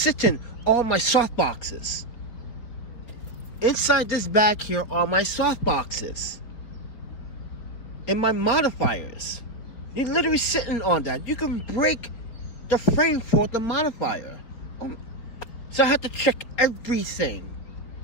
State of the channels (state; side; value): late; right; 4.6 ms